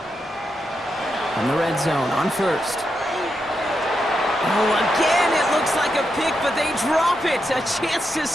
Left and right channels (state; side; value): normal; both; correlation 0.85